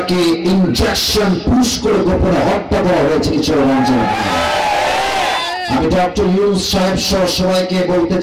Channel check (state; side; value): identical; both; correlation 1.00